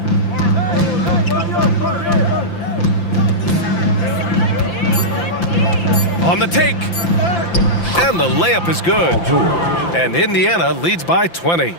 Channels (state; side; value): late; right; 5.9 ms